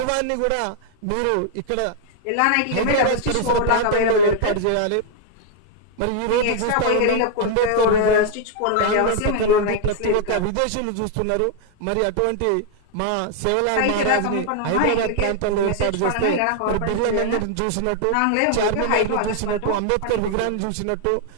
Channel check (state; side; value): different; both; correlation 0.00